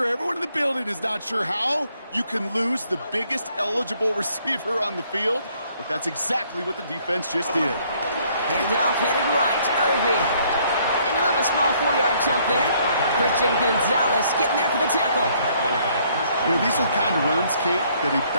Everyone in the building is not sure how you can lose the biggest eligible receiver on the field, but that's exactly what the defense just did. Handoff headed right. Irving. And he'll have a small 4-yard chunk there. Christian Gonzalez getting there for the tackle. You know, these are the kind of runs, Kate, that a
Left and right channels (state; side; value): inverted; both; correlation -0.65